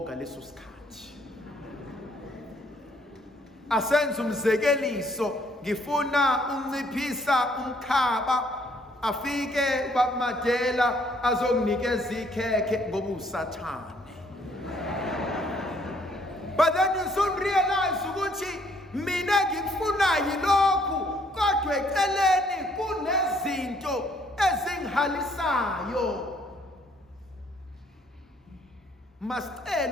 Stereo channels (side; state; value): both; normal; correlation 0.65